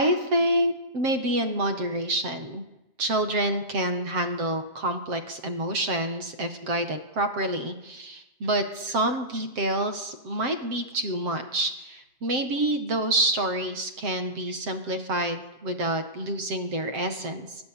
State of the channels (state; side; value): late; left; 7.6 ms